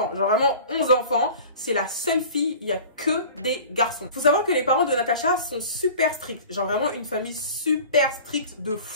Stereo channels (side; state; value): both; inverted; correlation -0.41